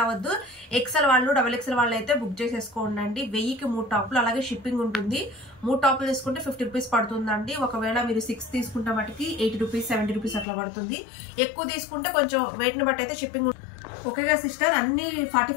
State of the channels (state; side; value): drops out; right; at 10.5 s